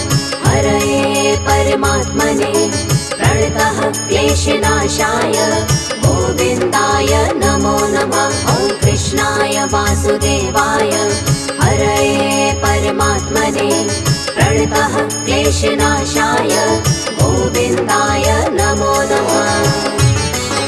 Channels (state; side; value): identical; both; correlation 1.00